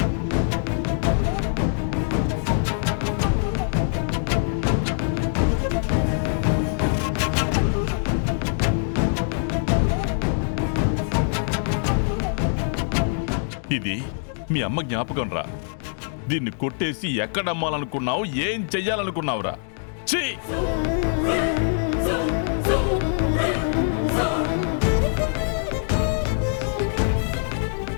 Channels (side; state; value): right; silent; digital silence